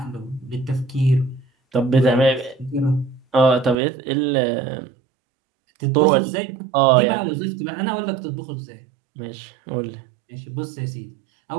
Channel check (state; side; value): drops out; left; at 3.8 s